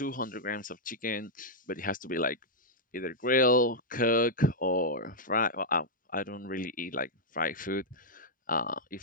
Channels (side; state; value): both; normal; correlation -0.05